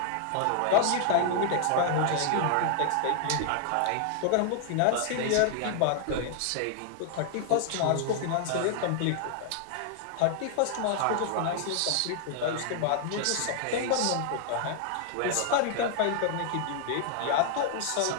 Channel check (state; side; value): different; both; correlation 0.00